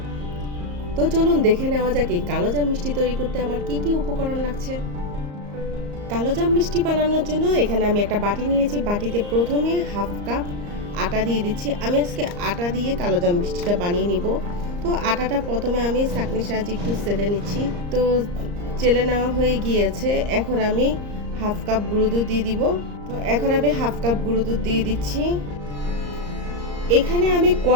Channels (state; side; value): late; left; 34 ms